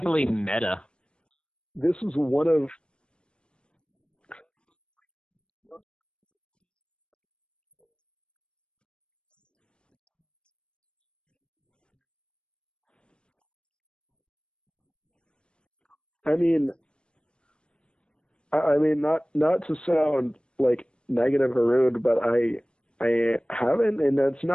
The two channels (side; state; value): right; late; 0.055 ms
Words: meta. Yeah. This is one of... But let me just swing this up into the positive side. Do you see any upcoming talents? Did you see any talent in the conventions you've attended? Upcoming comedians. I mean, not to sound like negative or rude, but I haven't, and that's